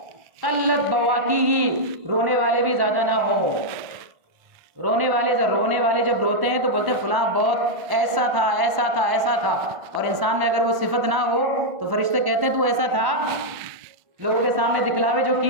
قلت بواکیہ، رونے والے بھی زیادہ نہ ہو. رونے والے جب روتے ہیں تو بولتے ہیں فلاں بہت ایسا تھا ایسا تھا ایسا تھا، اور انسان میں اگر وہ صفت نہ ہو تو فرشتے کہتے ہیں تو ایسا تھا لوگوں کے سامنے دکھلاوے جو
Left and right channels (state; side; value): late; left; 1.1 ms